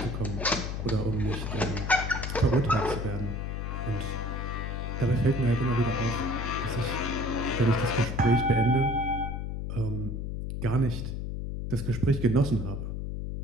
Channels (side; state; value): left; noise; hum, 4 dB below the sound